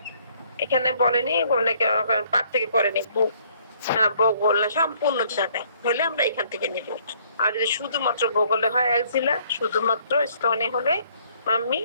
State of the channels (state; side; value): inverted; both; correlation -0.63